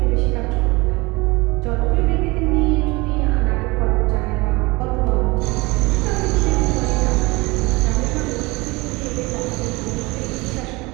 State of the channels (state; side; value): quieter; left; 23.9 dB